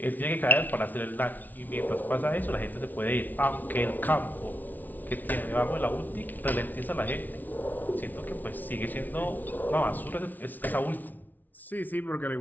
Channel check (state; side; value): late; right; 0.082 ms